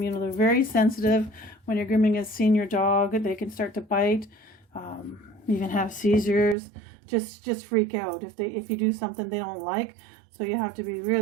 You know, they're very sensitive when you're grooming a senior dog. They can start to bite, even have seizures, just freak out if you do something they don't like. So you have to be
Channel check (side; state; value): left; drops out; at 6.6 s